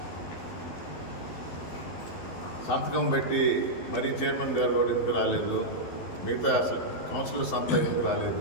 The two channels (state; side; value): late; right; 12 ms